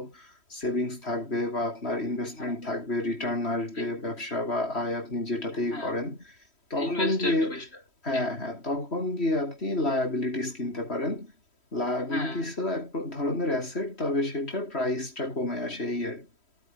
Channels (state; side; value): late; right; 3.1 ms